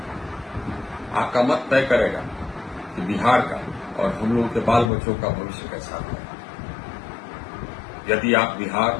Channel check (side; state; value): right; drops out; at 4.9 s